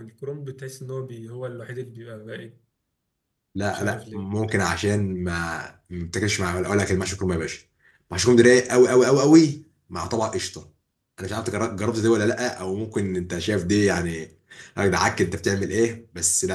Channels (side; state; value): both; identical; correlation 1.00